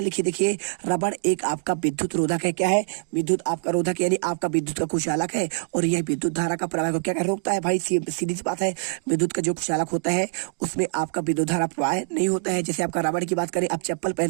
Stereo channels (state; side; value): silent; left; digital silence